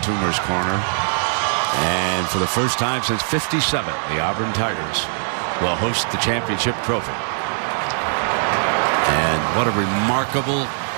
Corner. And for the first time since '57, the Auburn Tigers will host the championship trophy. And what a remarkable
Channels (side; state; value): left; silent; 56 dB below the other